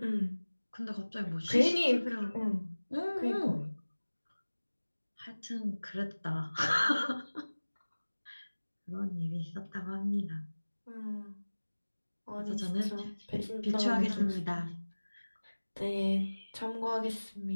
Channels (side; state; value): both; inverted; correlation -1.00